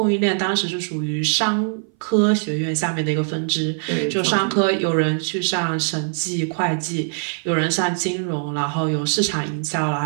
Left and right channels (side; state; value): left; silent; 60 dB below the other